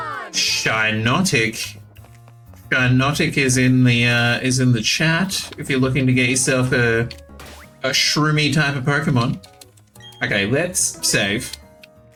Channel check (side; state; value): both; identical; correlation 1.00